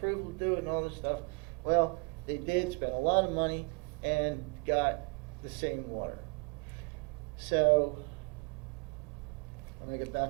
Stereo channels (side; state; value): left; quieter; 31.8 dB